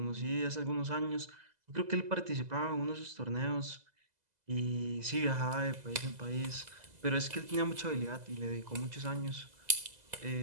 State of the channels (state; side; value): late; left; 2.0 ms